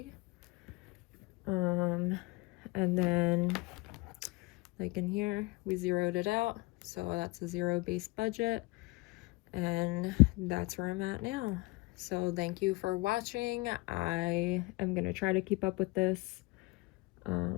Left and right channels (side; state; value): right; quieter; 24.0 dB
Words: And then like in here we zeroed it out, so that's a zero-based budget. And that's where I'm at now. So thank you for watching. I am going to try to keep up with this.